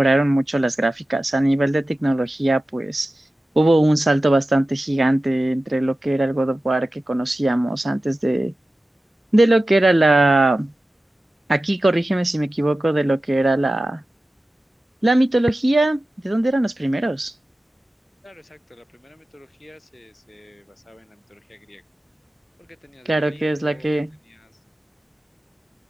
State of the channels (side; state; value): both; normal; correlation 0.95